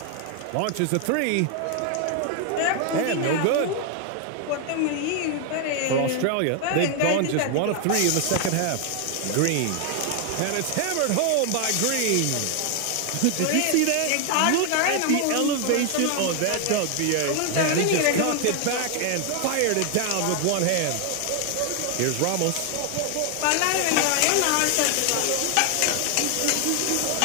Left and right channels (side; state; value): both; different; correlation 0.00